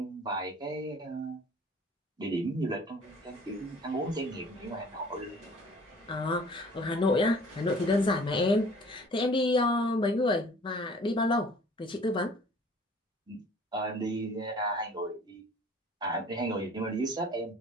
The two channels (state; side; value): normal; both; correlation 0.51